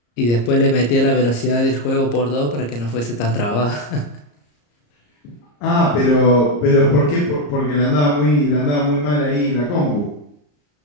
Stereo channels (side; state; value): right; late; 34 ms